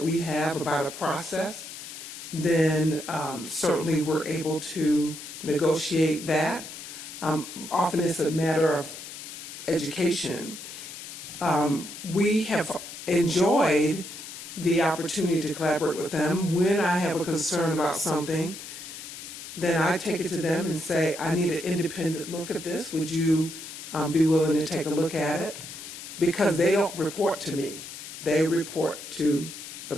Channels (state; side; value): noise; left; hiss, 11 dB below the sound